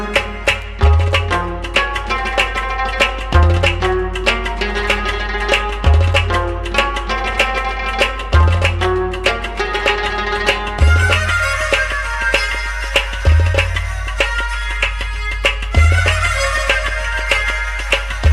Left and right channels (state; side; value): identical; both; correlation 1.00